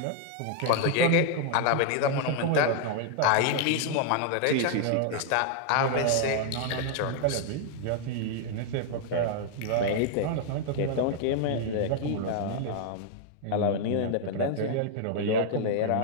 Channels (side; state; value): both; different; correlation 0.00